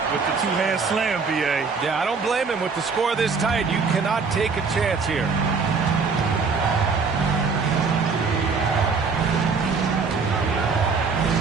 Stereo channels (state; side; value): quieter; left; 4.9 dB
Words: with the two-hand slam, B.A. Yeah, I don't blame him with the score this tight. You cannot take a chance here.